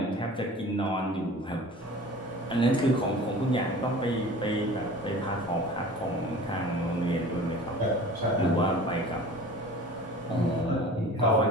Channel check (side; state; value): both; normal; correlation 0.41